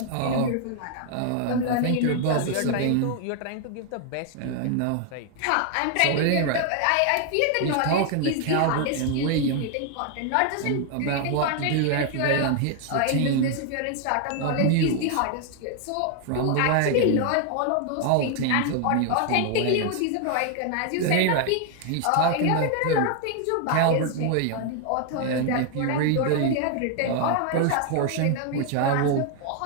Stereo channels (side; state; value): both; different; correlation 0.00